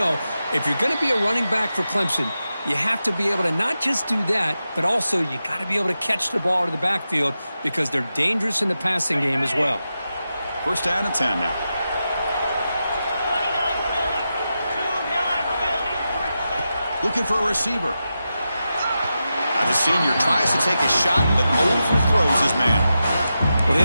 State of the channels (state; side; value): inverted; both; correlation -0.90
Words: if you're going to be a running back for Clemson, you have to be able to not just do that, but also you got to be able to catch the ball to the backfield because they're dangerous in the passing game as well. First down and 10 now. Looking for a receiver. The senior tries to take a shot, but overthrows his man. Well, they